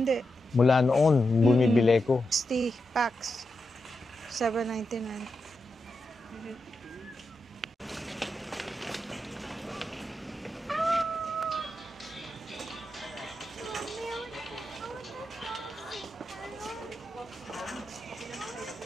Mula noon, bumibili ko. 60 packs. 799.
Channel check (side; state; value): both; normal; correlation 0.87